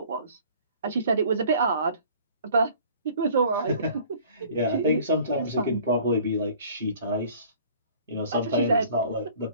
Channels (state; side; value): inverted; both; correlation -0.52